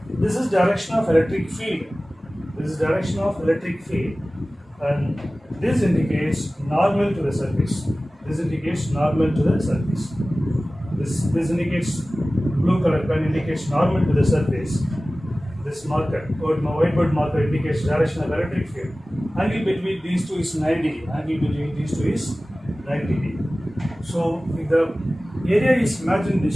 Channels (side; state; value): both; normal; correlation 0.97